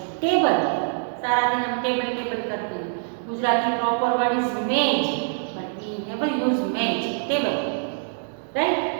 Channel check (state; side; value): silent; left; digital silence